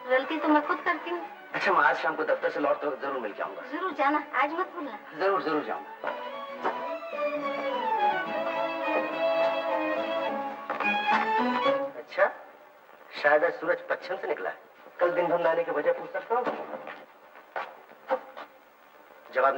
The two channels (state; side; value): identical; both; correlation 1.00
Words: गलती तो मैं खुद करती हूँ। अच्छा मैं आज शाम को दफ्तर से लौट कर जरूर मिल के आऊंगा। जरूर जाना, आज मत भूलना। जरूर जरूर जाऊंगा। अच्छा शायद आज सूरज पश्चिम से निकला है। कल दिन भर नहाने की वजह पूछ सकता हूँ? जवाब